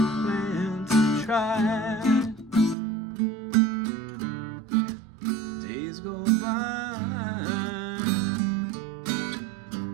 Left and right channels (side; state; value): left; drops out; at 2.8 s